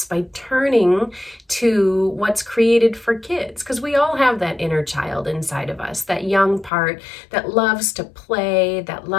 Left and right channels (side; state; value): right; drops out; at 6.7 s